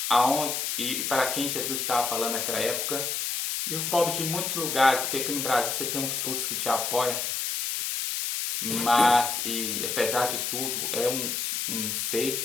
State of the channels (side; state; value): left; noise; hiss, 1 dB below the sound